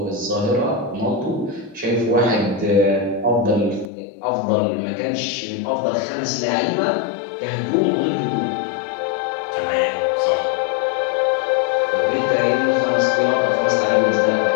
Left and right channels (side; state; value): right; drops out; at 3.9 s